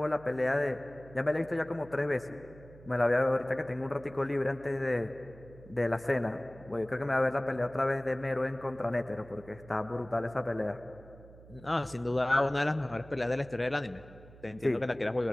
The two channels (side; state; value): right; noise; hum, 20 dB below the sound